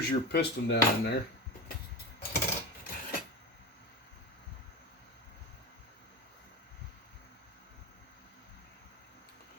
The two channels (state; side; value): normal; both; correlation 0.23